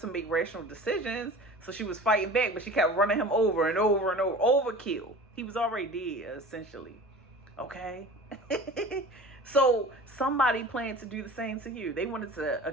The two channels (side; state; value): both; normal; correlation 0.39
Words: make rational decisions, so she was fighting back, but she kept running him over and over and over. Overkill. He was already dead, essentially. Okay? So somebody planned to do the same to you. They wanted to,